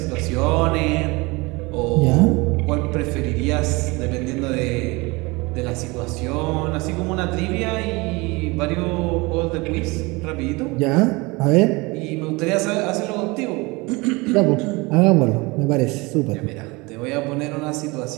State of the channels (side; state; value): left; quieter; 24.8 dB